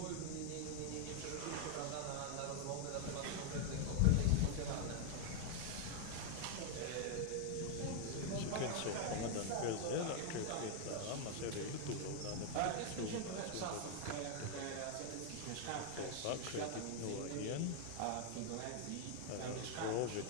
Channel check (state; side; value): different; both; correlation 0.00